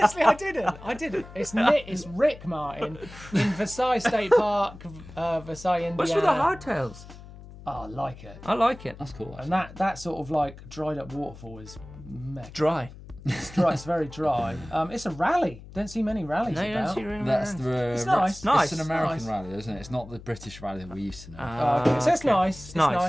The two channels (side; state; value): left; noise; hum, 17 dB below the sound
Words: I didn't. It's Rick Martin in Versailles State Park, Versailles, Indiana. What's with the hardtails? Oh, I like it. I like it. That's cool. And that sort of like dried up waterfall is meh. Dry. It's dry. It's very dry. It's a rally. Don't see many rallies No, you don't about. see really That's many. the. It's nice. Nice. It's an American Nice. rally, isn't it? It's not the British rally that we used to know. Okay, so it's okay. nice. It's nice.